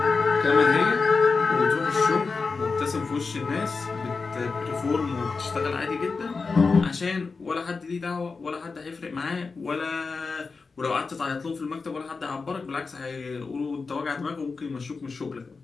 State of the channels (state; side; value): quieter; right; 4.5 dB